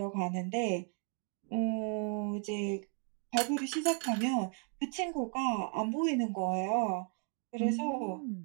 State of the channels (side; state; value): left; quieter; 39.3 dB